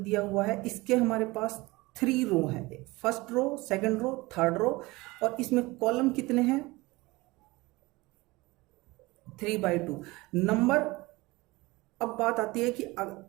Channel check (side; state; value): left; quieter; 21.9 dB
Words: हुआ है, इसके हमारे पास 3 रो है, first row, second row, third row, और इसमें कॉलम कितने हैं 3/2 नंबर। अब बात आती है कि